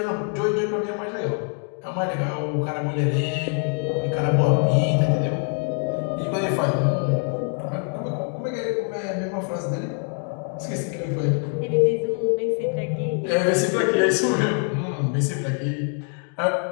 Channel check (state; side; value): quieter; right; 39.7 dB